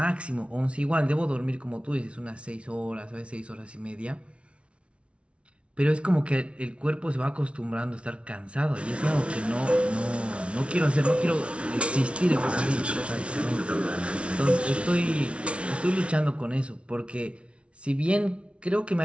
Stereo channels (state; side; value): late; left; 0.060 ms